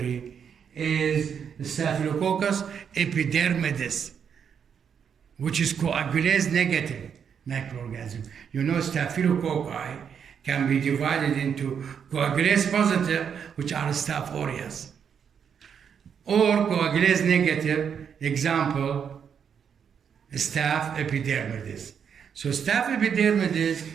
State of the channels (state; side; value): quieter; left; 7.4 dB